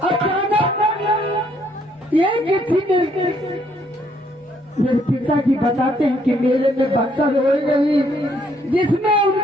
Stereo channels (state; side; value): normal; both; correlation 0.68